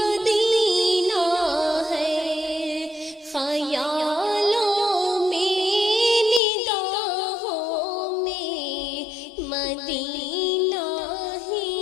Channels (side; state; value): right; drops out; at 6.4 s